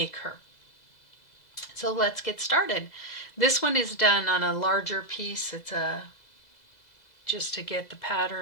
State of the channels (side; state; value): right; late; 2.0 ms